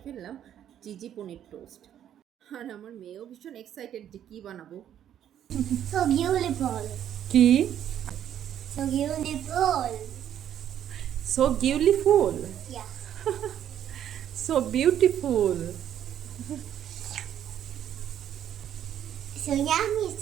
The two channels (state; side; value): quieter; left; 10.3 dB